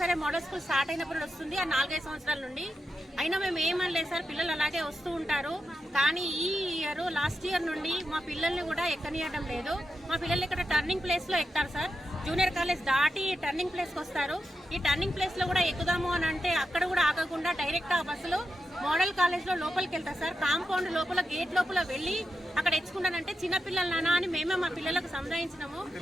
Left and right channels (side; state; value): both; normal; correlation 0.87